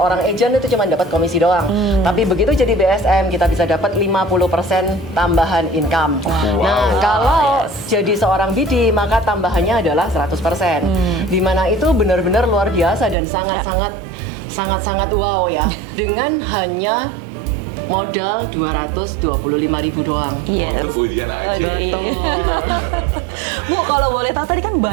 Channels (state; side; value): drops out; left; at 13.2 s